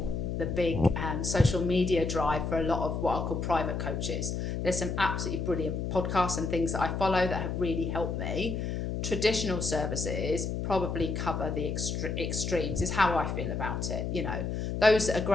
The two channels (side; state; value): left; noise; hum, 2 dB below the sound